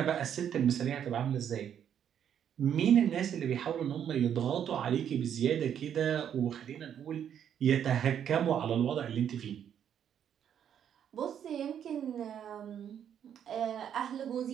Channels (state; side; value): quieter; left; 9.1 dB